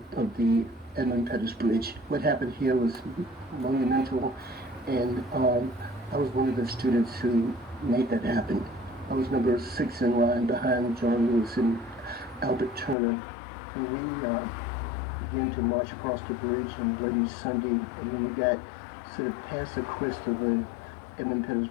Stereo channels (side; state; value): right; drops out; at 13.0 s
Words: of the Edmund Pettus Bridge. What happened here was monumental, and I was one of the students who made that happen. I was number 6 in line behind John Lewis and Albert Turner, and we began to march across the bridge on Bloody Sunday, and when we got sort of past the crest of the Edmund Pettus